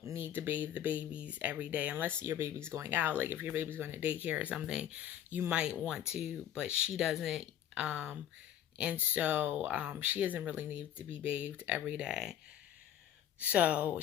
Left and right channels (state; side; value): quieter; right; 10.7 dB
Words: need to bathe the babies every day unless your baby's going out. Like if your baby's going to daycare or something, you might want to, but she doesn't. And so she doesn't really need to be bathed every day. So